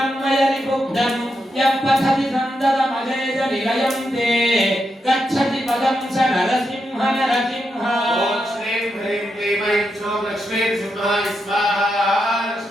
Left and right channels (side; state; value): both; normal; correlation 0.84